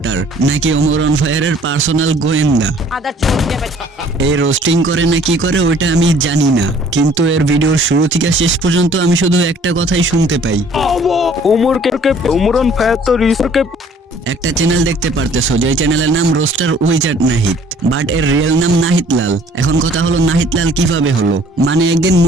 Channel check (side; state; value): both; normal; correlation 0.56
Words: নাকি ওমর অন ফায়ারের পার্সোনাল গোয়েন্দা। এই রোস্টিং করে না কি করে ওইটা আমি জানি না, কিন্তু এর ভিডিওর শুরু থেকে শেষ পর্যন্ত আমি শুধু একটা কথাই শুনতে পাই, ওমর অন ফায়ার তো রিসোর্টকে। একটা চ্যানেল দেখতে পারতেছো যে চ্যানেলের নাম রোস্টার উইজার্ড নাহিদ, বাট এর রিয়েল নাম নাহিদ লাল। এখন কথা হলো নাহিদ লাল কিভাবে হলো? মানে একদিন